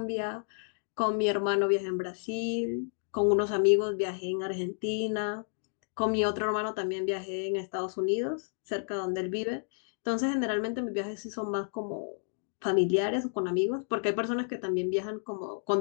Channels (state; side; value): silent; right; digital silence